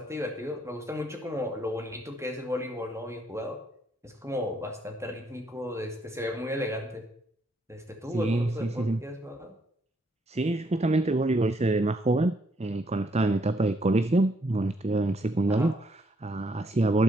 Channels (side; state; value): both; normal; correlation 0.72